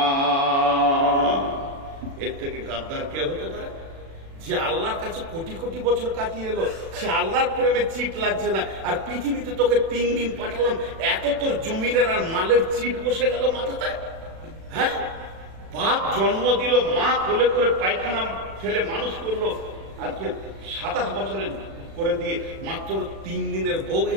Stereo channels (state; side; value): late; left; 36 ms